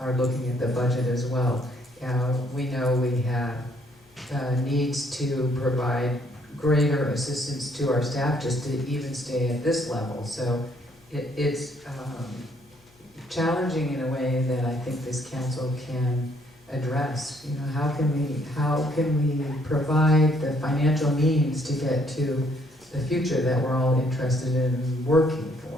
looking at the budget as well. We know we have needs to provide greater assistance to our staff just to even stay at this level. So it's challenging in a way that I think this council can address. You know, how can we provide the financial means to get to the future that we're all interested in working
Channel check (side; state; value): left; noise; hum, 30 dB below the sound